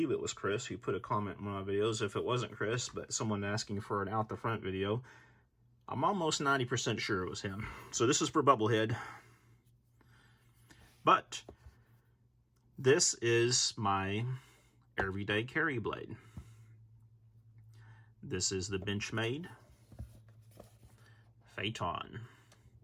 was Chris who put a comment in one of my videos. If it wasn't Chris, but someone asking for an out the front video, I'm almost 90% sure it was him. So this is for Bubblehead. But this is my everyday carry blade. This is the Benchmade Phaeton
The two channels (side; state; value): both; identical; correlation 1.00